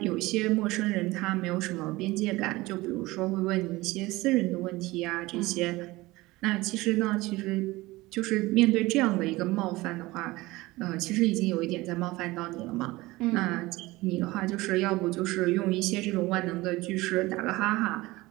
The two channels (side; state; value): left; quieter; 20.1 dB